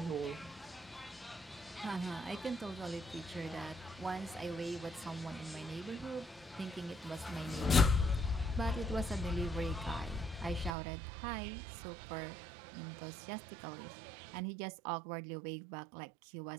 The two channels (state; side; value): drops out; left; at 10.7 s